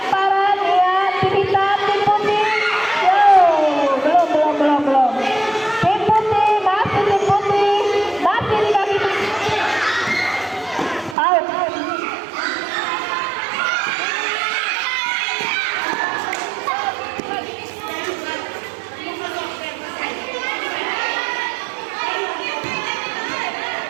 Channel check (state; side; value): drops out; left; at 11.2 s